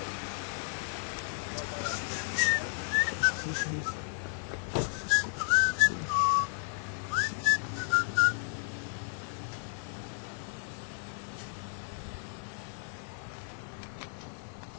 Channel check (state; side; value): silent; right; 56 dB below the other